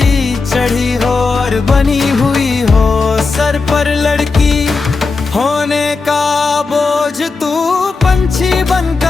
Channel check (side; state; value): right; quieter; 4.2 dB